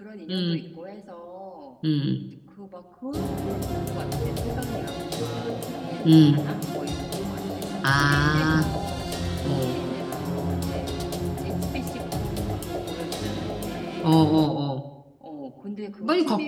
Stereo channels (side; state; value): both; identical; correlation 1.00